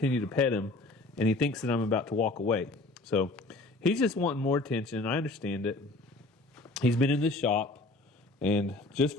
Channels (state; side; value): quieter; right; 3.0 dB